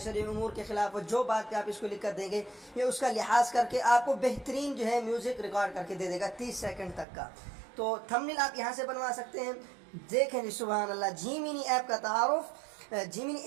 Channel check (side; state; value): left; drops out; at 7.1 s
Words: उमूर के ख़िलाफ़ हो, जो बात पे आप इसको लिख कर देंगे, ये उसका लिहाज करके आपको बेहतरीन जो है म्यूज़िक रिकॉर्ड करके दे देगा 30 सेकंड तक का। तो थंबनेल आप यहाँ से बनवा सकते हैं। देखें जी, सुभान अल्लाह, जीमिनी ऐप का तारुफ। जीमिनी